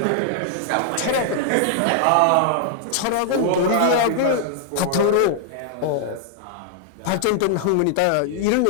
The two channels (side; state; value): both; different; correlation -0.01